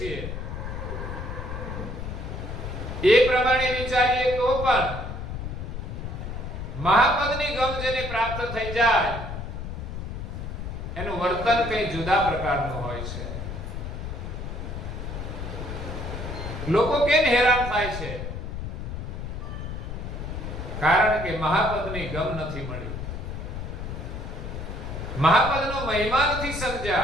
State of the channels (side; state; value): left; noise; rumble, 6 dB below the sound